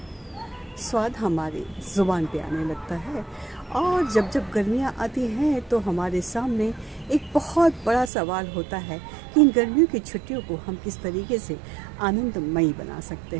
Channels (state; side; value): drops out; left; at 8.1 s